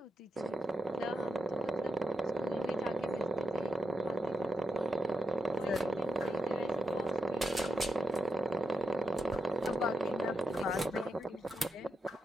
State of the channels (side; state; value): both; normal; correlation 0.87